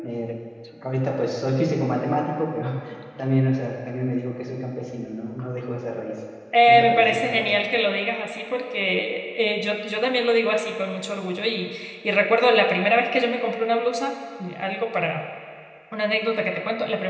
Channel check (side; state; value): both; identical; correlation 1.00